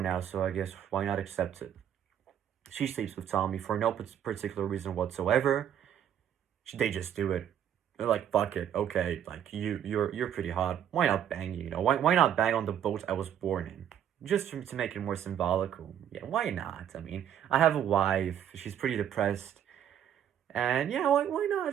so I guess why not accept it? She sleeps with Tommy for no particular reason whatsoever. They just do it. They're like, fuck it, okay, like, you're pretty hot. Why not bang you, Why not bang on the boat I was born in? Just to make it more symbolical. Yeah, why not? I mean, I have a wife. She's pretty depressed. And yeah, why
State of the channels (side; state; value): left; quieter; 9.7 dB